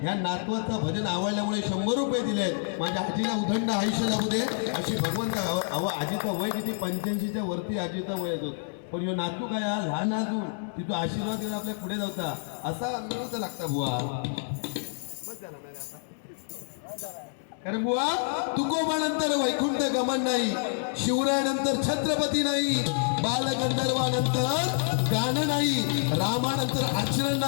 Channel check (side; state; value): right; silent; digital silence